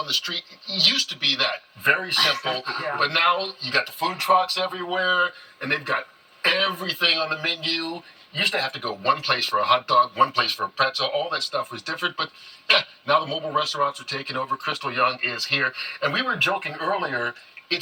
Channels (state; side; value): identical; both; correlation 1.00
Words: the street. It used to be that. Very simple. Yeah. But now you got the food trucks everywhere, and they've got everything on the menu. You used to have to go one place for a hot dog, one place for a pretzel. All that stuff was different. But yeah, now the mobile restaurants are taking over. Crystal Young is here. And we were joking earlier.